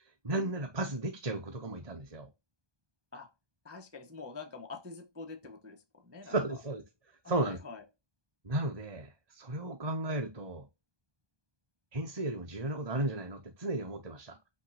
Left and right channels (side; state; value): left; late; 1.2 ms